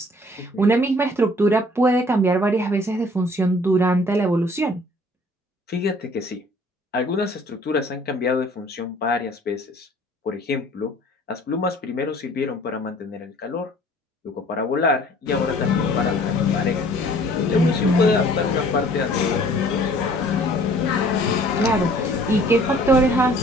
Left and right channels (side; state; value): both; normal; correlation 0.54